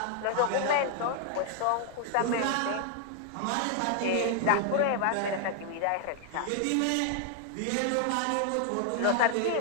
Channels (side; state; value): both; different; correlation 0.00